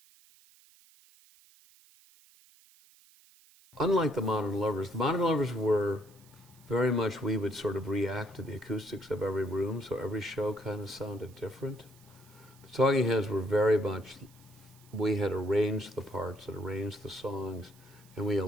Unlike the Modern Lovers were very much, we would sort of react to the acoustics of every room, so every show kind of sounded different. The Talking Heads were very much, we had arranged the parts and arranged the songs, and we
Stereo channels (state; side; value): noise; right; hiss, 27 dB below the sound